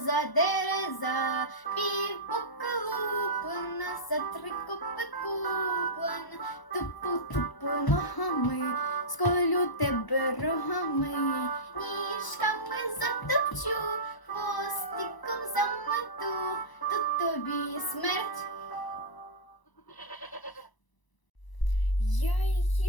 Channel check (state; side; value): late; right; 1.0 ms